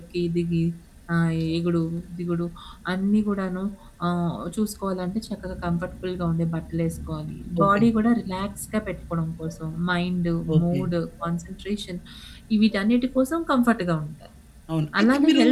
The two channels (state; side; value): identical; both; correlation 1.00